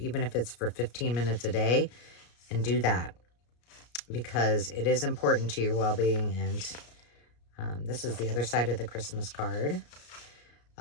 if it's for 15 minutes a day, and do that, because it is important to your well-being. And this is the other side of the Christmas card.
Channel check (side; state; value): right; late; 33 ms